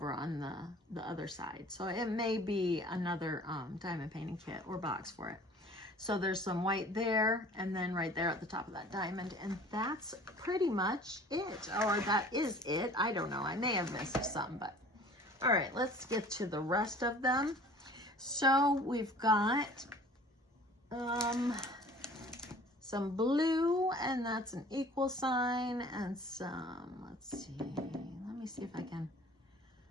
on the other side. So it may be another diamond painting kit or box for it. So there's some white there, and then right there at the top of that diamond. And that's pretty much it, or that is it. I don't know. I may have missed some, but all right, let's get to the rest of them. So we've got some blue, and that's an equal sign, and some, let's see, let me see if I can,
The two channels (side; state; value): both; normal; correlation 0.48